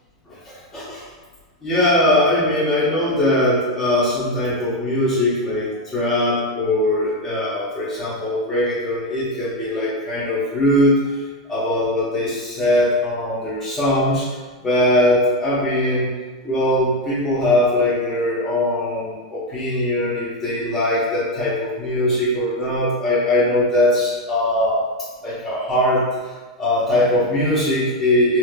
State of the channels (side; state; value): both; normal; correlation 0.09